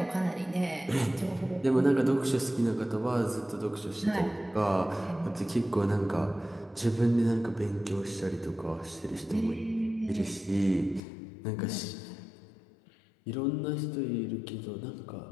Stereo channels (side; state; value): right; drops out; at 11.0 s